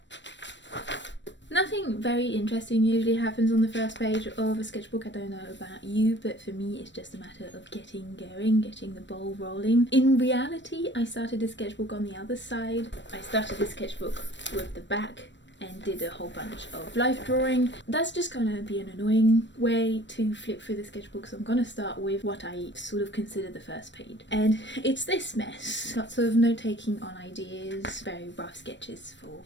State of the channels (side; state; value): right; late; 0.53 ms